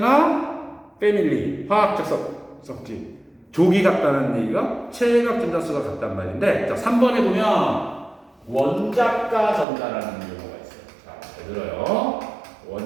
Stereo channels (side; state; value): left; drops out; at 9.7 s